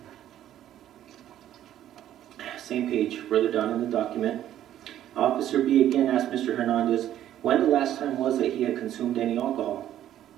Same page, further down in the document. Officer B again asked Mr. Hernandez when the last time was that he had consumed any alcohol.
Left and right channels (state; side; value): quieter; left; 11.8 dB